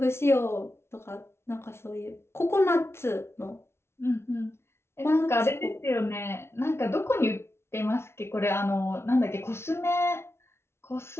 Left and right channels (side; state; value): right; late; 0.12 ms